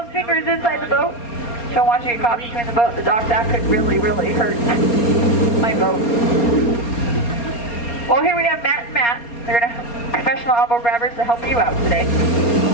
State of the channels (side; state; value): right; late; 4.3 ms